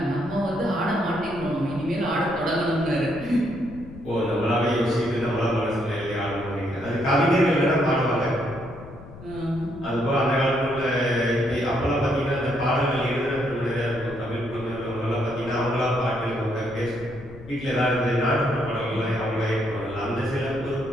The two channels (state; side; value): noise; left; rumble, 16 dB below the sound